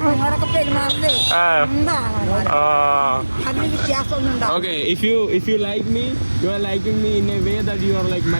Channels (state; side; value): inverted; both; correlation -1.00